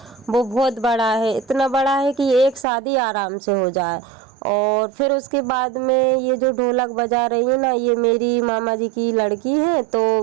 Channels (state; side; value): drops out; left; at 2.7 s